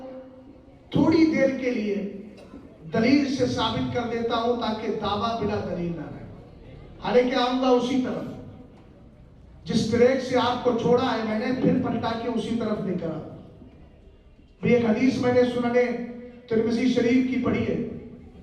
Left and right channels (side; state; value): both; identical; correlation 1.00